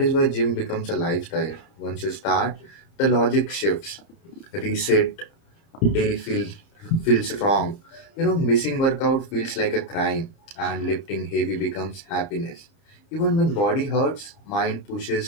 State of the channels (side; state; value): right; late; 30 ms